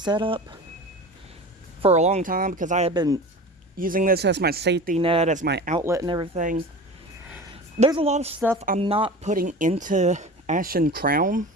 up for a long time, because I had been using this as my safety net, as my outlet and everything, there's a lot of stuff I'm not putting into Ashen Crown.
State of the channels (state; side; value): normal; both; correlation 0.34